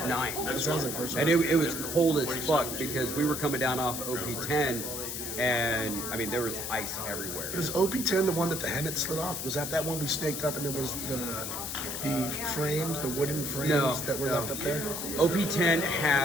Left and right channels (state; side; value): noise; left; hiss, 5 dB below the sound